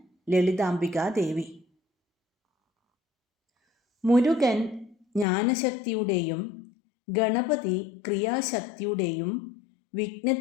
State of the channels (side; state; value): right; drops out; at 5.2 s